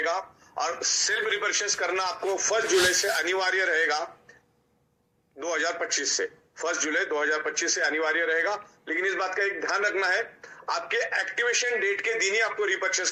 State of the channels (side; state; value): both; identical; correlation 1.00